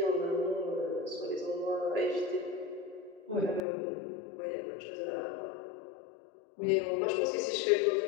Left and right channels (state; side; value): drops out; right; at 3.6 s